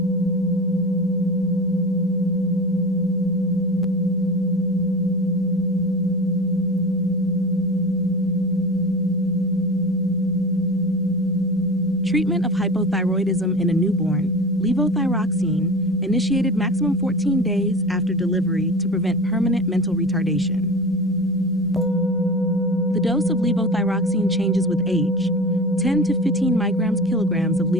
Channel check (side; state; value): both; normal; correlation 0.31